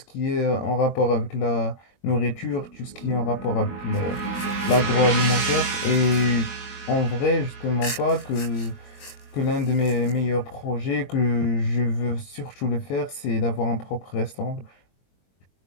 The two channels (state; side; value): late; right; 21 ms